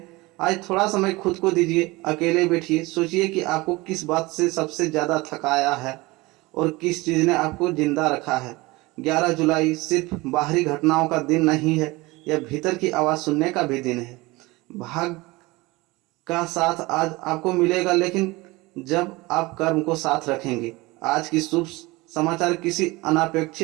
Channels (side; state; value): left; quieter; 22.2 dB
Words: आज थोड़ा समय खुद को दीजिए, अकेले बैठिए, सोचिए कि आपको किस बात से सबसे ज़्यादा थकाया है और किस चीज़ ने आपको जिंदा रखा है। 11 जुलाई सिर्फ बाहरी घटनाओं का दिन नहीं है, यह भीतर की आवाज़ सुनने का भी दिन है। भाग का साथ आज आपको मिलेगा लेकिन जब आप कर्म को साथ रखेंगे। आज की शुभ समाचार, किसी